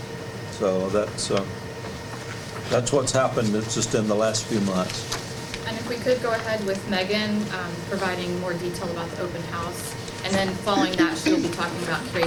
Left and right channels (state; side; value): identical; both; correlation 1.00